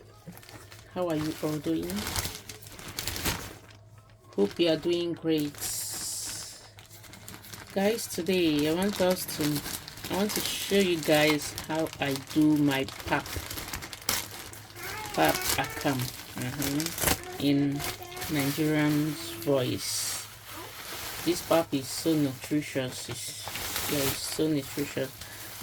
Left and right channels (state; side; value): identical; both; correlation 1.00